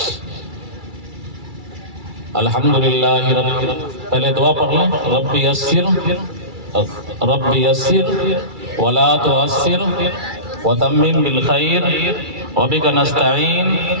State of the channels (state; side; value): late; left; 2.3 ms